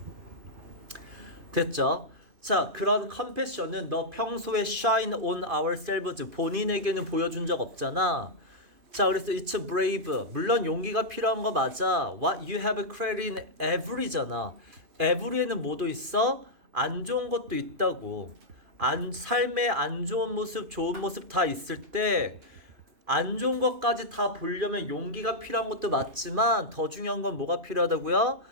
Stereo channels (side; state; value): left; late; 2.5 ms